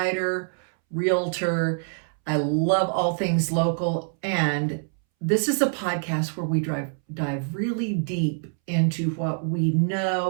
realtor. I love all things local. And this is a podcast where we dive really deep into what we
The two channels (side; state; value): left; silent; 62 dB below the other